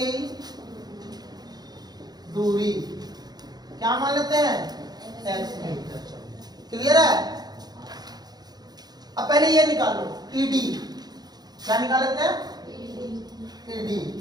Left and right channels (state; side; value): late; left; 0.19 ms